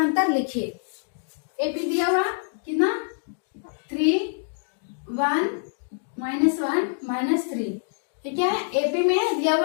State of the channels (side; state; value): right; silent; digital silence